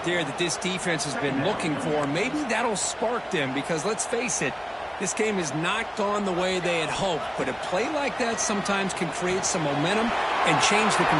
there that this defense has been looking for. Maybe that'll spark them because, let's face it, this game has not gone the way they had hoped. But a play like that sometimes can create some momentum and change the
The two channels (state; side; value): identical; both; correlation 1.00